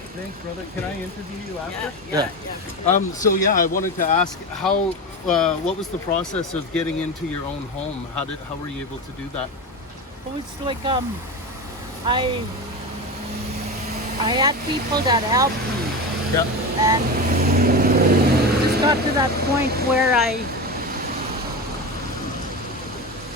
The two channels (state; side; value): normal; both; correlation 0.22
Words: Thanks, brother. Can I interview you after? Yeah. So I wanted to ask how, what was the process of getting into your own home? How were you able to do that? it was like I had people that helped me, Yeah. and it just got to that point where